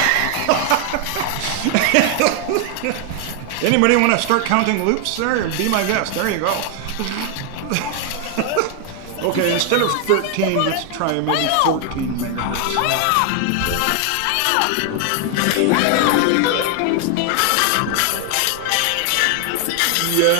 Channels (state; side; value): different; both; correlation 0.00